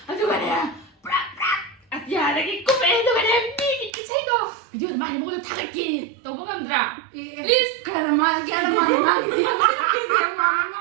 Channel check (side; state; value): left; drops out; at 3.9 s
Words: ꯑꯗꯨꯒꯅꯦ ꯄꯨꯔꯥ ꯑꯇꯤꯌꯥꯗꯒꯤ ꯀꯨꯝꯃꯛꯑꯦ ꯑꯗꯨꯒꯅꯦ ꯃꯤꯒꯤ ꯏꯁꯩꯗꯣ ꯚꯤꯗꯤꯑꯣꯗ ꯃꯥꯒꯤ ꯃꯉꯣꯟꯗ ꯊꯥꯒꯠꯀꯦ ꯇꯧꯕ ꯉꯝꯗ꯭ꯔꯥ ꯄ꯭ꯂꯤꯖ